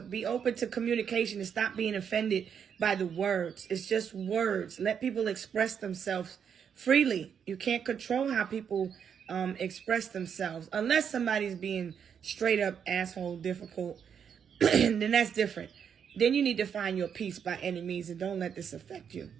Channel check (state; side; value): quieter; left; 7.6 dB